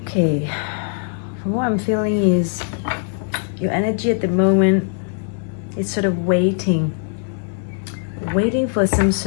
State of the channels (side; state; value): right; silent; digital silence